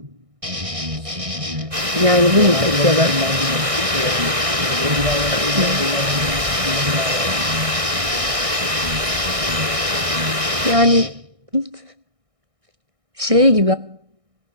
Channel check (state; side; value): late; left; 1.6 ms